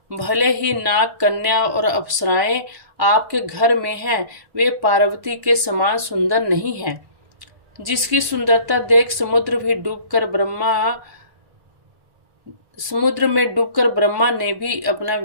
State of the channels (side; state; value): left; late; 1.1 ms